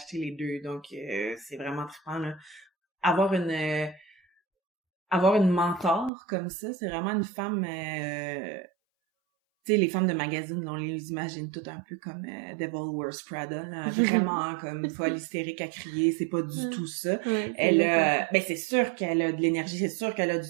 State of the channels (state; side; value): drops out; left; at 6.1 s